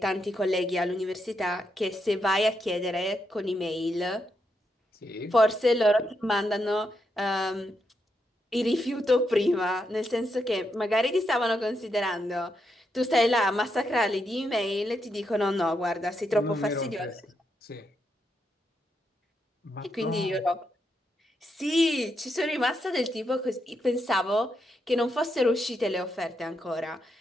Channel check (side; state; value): both; normal; correlation 0.82